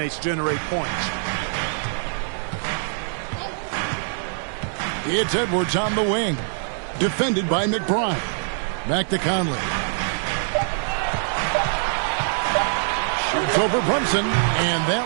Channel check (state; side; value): silent; left; digital silence